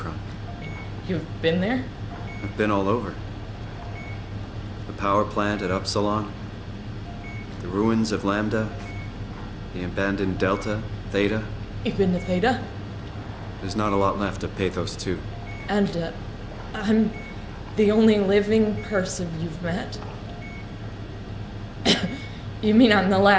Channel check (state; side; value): identical; both; correlation 1.00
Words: you've been there? I've been all over. The power plant at Upsilon, the ruins of Lambda, the abandoned Delta, Theta. You've been to Theta? There's not a lot left of Pathos 2. And, I'm the only living person you've met? You mean I'm the